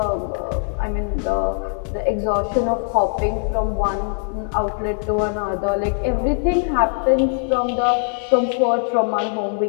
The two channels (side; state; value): right; silent; 65 dB below the other